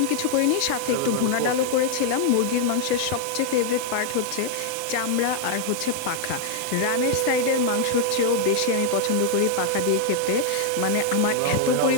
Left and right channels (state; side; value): different; both; correlation 0.00